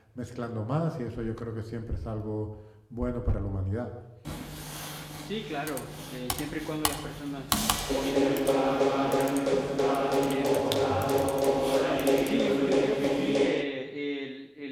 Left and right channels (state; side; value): identical; both; correlation 1.00